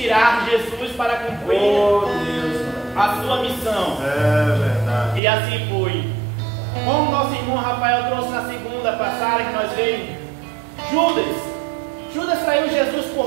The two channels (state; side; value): drops out; left; at 5.2 s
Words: Jesus para cumprir a sua missão. É verdade. E assim foi. Como nosso irmão Rafael trouxe na segunda passagem que nós vimos, Judas traiu Jesus